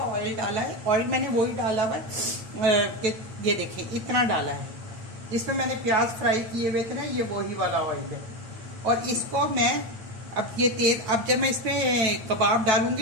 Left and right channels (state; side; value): late; left; 8.8 ms